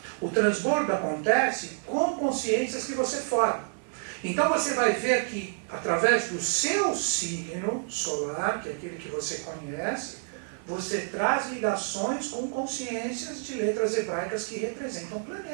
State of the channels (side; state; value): left; silent; digital silence